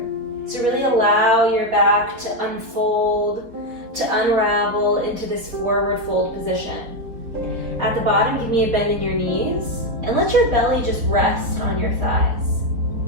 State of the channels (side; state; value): left; late; 4.4 ms